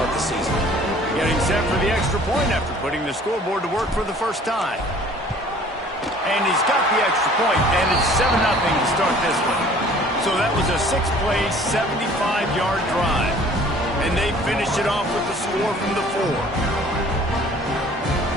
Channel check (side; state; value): both; normal; correlation 0.52